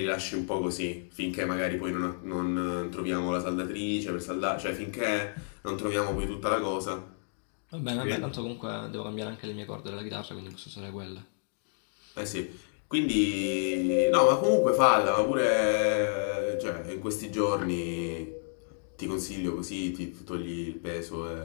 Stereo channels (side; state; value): right; silent; digital silence